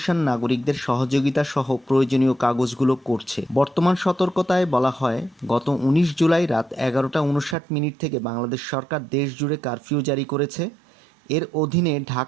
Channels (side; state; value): left; drops out; at 7.6 s